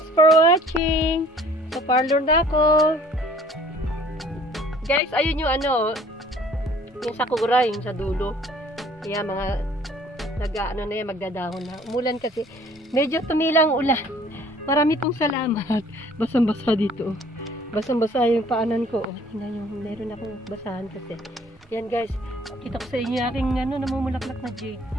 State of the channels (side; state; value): both; normal; correlation 0.55